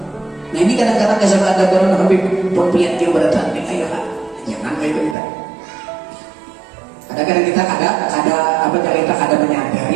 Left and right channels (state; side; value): drops out; left; at 5.2 s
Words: Nah ini kadang-kadang kesal ada orang Habib pempiat dia berdatang, ayo jangan kayak itu kita. Kadang-kadang kita ada menyadari